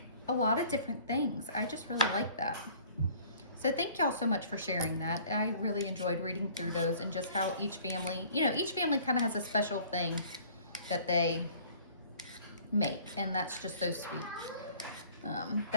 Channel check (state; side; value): inverted; both; correlation -0.53